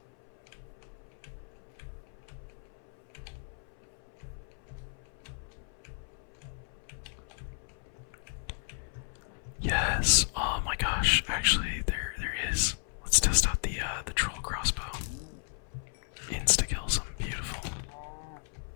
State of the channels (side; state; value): right; silent; 55 dB below the other